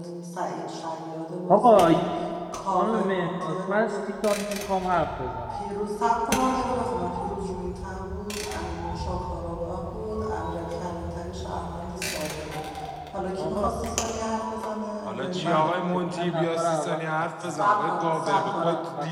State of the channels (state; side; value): identical; both; correlation 1.00